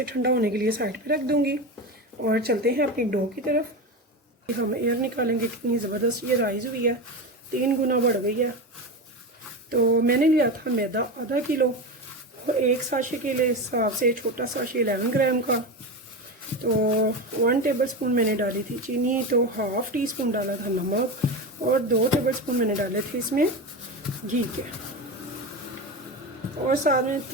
ठंडा होने के लिए साइड पे रख दूँगी और चलते हैं अपनी डो की तरफ। हम एयर निकालेंगे, कितनी ज़बरदस्त ये राइज़ हुई है, 3 गुना बढ़ गई है। तो मैंने लिया था मैदा आधा किलो, और 1 साशे के लिए हिसाब से छोटा साशे 11 ग्राम का। तो 1 टेबल स्पून मैंने डाली थी चीनी, तो ½ टीस्पून डाला था नमक, और 2 टेबल स्पून मैंने डाले थे इसमें घी के, और साथ में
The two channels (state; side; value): normal; both; correlation 0.21